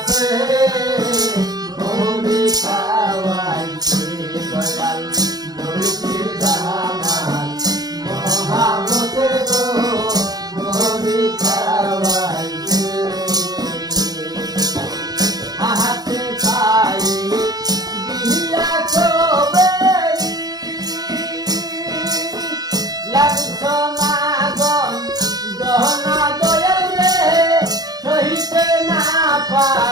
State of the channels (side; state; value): left; late; 0.19 ms